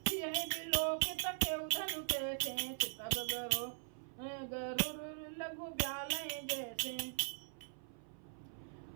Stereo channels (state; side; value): silent; left; 50 dB below the other